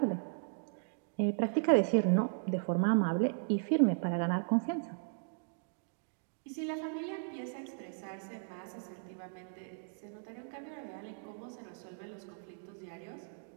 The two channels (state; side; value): silent; left; digital silence